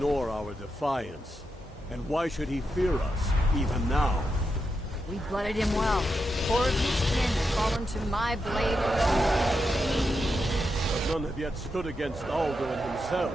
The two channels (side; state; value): both; normal; correlation 0.86